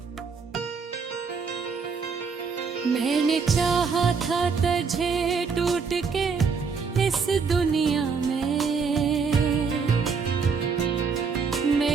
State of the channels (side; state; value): left; quieter; 5.4 dB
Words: मैंने चाहा था तुझे टूट के इस दुनिया में,